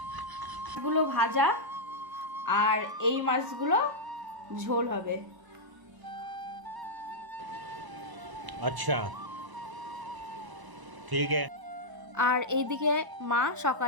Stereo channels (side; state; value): left; late; 1.0 ms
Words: এগুলো ভাজা, আর এই মাছগুলো ঝোল হবে। अच्छा ठीक है। আর এইদিকে মা